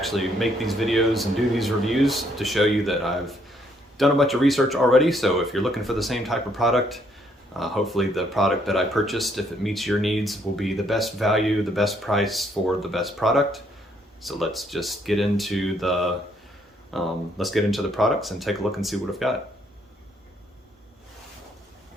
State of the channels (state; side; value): normal; both; correlation 0.69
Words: make these videos and do these reviews to show you that I've done a bunch of research already. So if you're looking for the same type of product, hopefully the product that I purchased, if it meets your needs, will be the best value, the best price for the best product. So let's just get into the products and take a look and see what I've got.